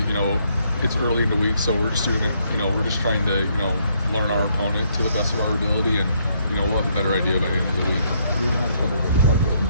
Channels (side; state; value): both; inverted; correlation -0.71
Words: it's early in the week, so we're just doing it. We're just trying to learn our opponent to the best of our ability, and we'll have a better idea by the end of the week. You have a couple of departures in